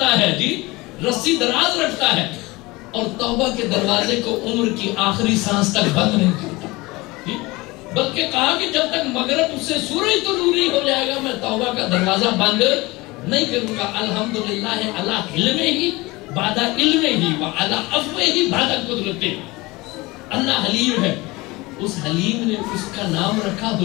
ہے، جی رسی دراز رکھتا ہے، اور توبہ کے دروازے کو عمر کی آخری سانس تک بند نہیں کرتا، بلکہ کہا کہ جب تک مغرب اس سے سورج طلوع نہیں ہو جائے گا میں توبہ کا دروازہ بند نہیں کروں گا۔ الحمدللہ علی علم ہی بعد علم ہی وعلی عفو ہی بعد قدرت۔ اللہ حلیم ہے، اس حلیم نے اس کا نام رکھا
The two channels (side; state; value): right; quieter; 22.3 dB